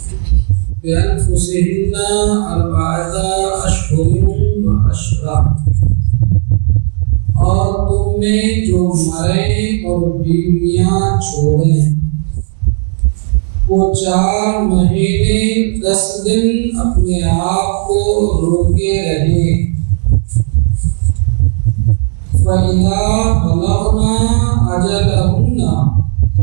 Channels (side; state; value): left; silent; 64 dB below the other